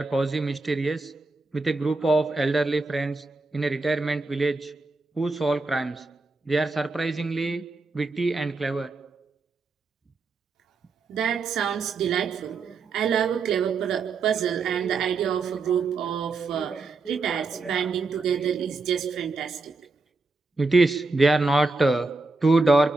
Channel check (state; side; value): quieter; left; 3.7 dB